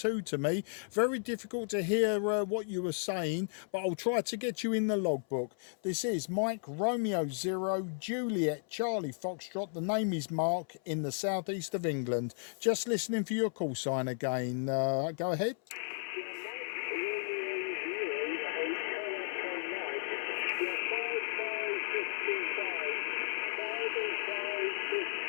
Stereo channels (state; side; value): silent; right; 55 dB below the other